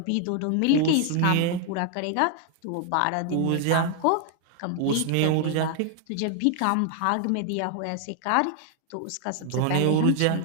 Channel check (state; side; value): different; both; correlation 0.00